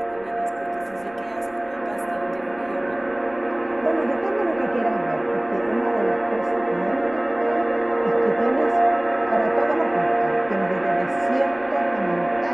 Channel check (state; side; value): noise; left; rumble, 27 dB below the sound